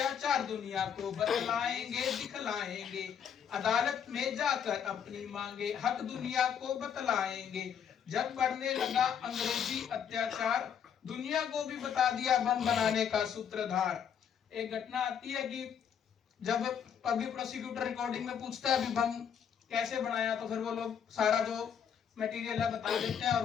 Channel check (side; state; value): right; quieter; 8.0 dB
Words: दुनिया को बतलाएंगे दिखलाएंगे, अदालत में जाकर अपनी मांगे हक दुनिया को बतलाएंगे, जब बढ़ने लगा अंग्रेजी अत्याचार दुनिया को भी बता दिया बम बनाने का सूत्रधार। एक घटना आती है कि जब पब्लिक प्रोसिक्यूटर रिकॉर्डिंग में पूछता है अभी बम कैसे बनाया, तो फिर वो लोग सारा जो मटेरियल है बता देते हैं और